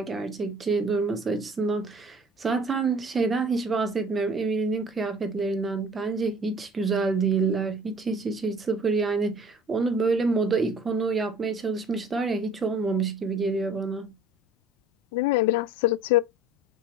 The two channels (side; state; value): both; normal; correlation 0.48